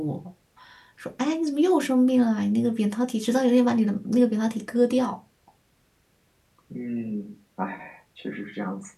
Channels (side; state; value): both; identical; correlation 1.00